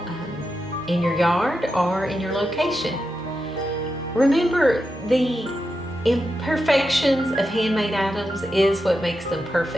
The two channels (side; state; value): both; normal; correlation 0.88